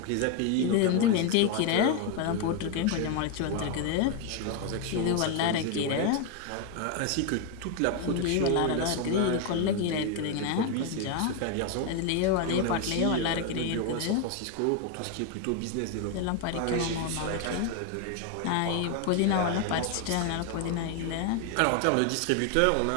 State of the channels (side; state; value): both; different; correlation 0.01